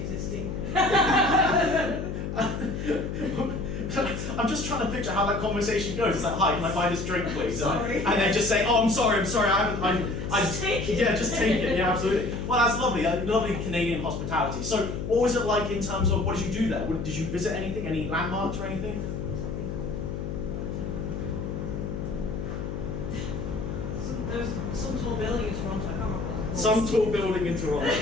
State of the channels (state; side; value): noise; left; hum, 5 dB below the sound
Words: I'm just trying to picture how that conversation goes. It's like, hi, can I buy this drink, please? Sorry. And they just say, oh, I'm sorry, Just take it. Yeah, just take it, yeah, absolutely. Well, that's lovely, lovely Canadian hospitality. So, what was it like in terms of, what did you do there? Did you visit anything, any landmarks or anything? There's some tall building in Toronto, I can't remember what it's called. Some tall building in Toronto.